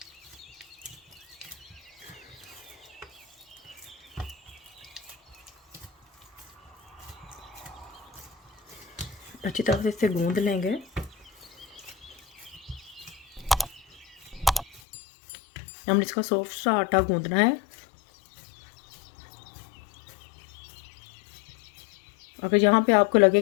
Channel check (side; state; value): right; drops out; at 14.8 s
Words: अच्छी तरह से इसे गूंद लेंगे। हमने इसका सॉफ्ट सा आटा गूंदना है। अगर यहाँ पे आपको लगे